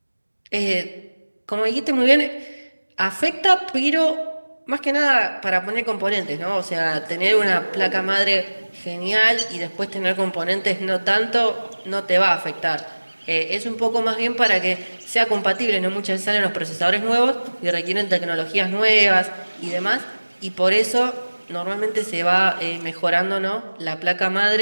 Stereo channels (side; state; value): both; inverted; correlation -1.00